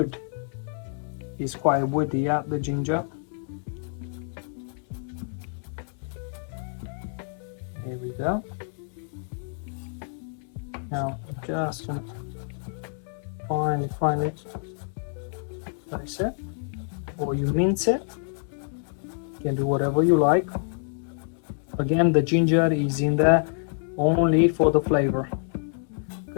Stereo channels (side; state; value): right; silent; 60 dB below the other